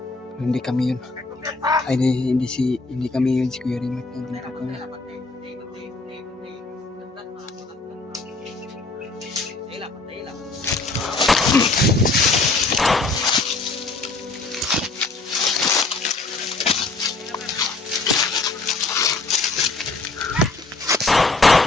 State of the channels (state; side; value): quieter; right; 3.5 dB